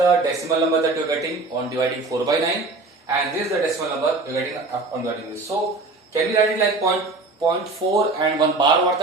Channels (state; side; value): quieter; left; 3.5 dB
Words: decimal number that you are getting on dividing 4 by 9. And this is the decimal number we are getting on dividing this. So can we write it like 0.4 and 1 bar over